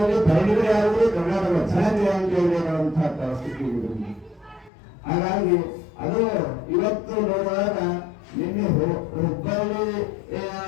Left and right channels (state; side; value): drops out; right; at 4.7 s